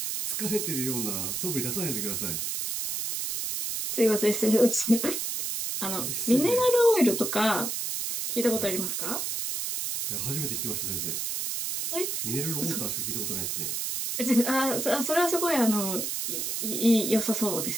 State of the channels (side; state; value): right; noise; hiss, 2 dB below the sound